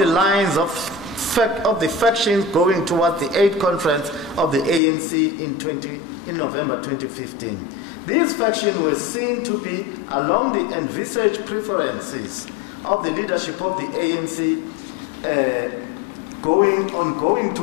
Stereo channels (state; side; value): drops out; right; at 4.8 s